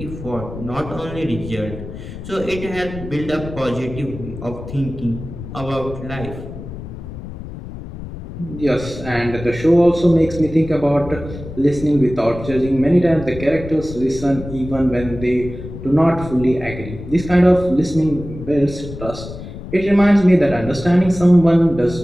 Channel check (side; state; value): left; noise; rumble, 11 dB below the sound